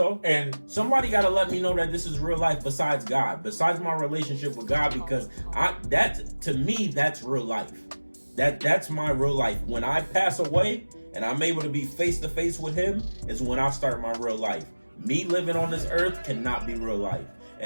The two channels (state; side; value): inverted; both; correlation -1.00